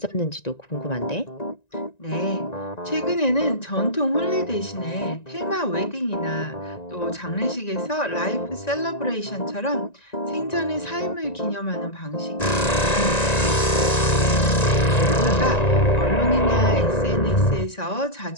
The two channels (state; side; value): late; right; 1.9 ms